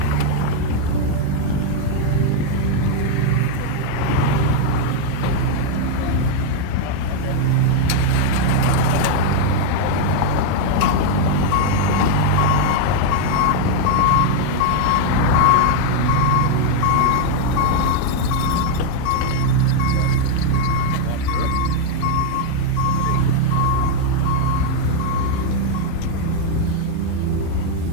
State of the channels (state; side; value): different; both; correlation 0.00